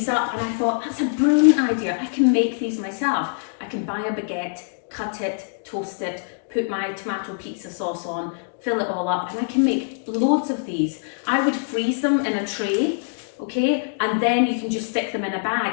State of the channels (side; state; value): right; silent; digital silence